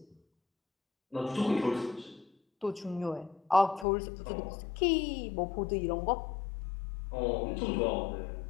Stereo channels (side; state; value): right; drops out; at 3.9 s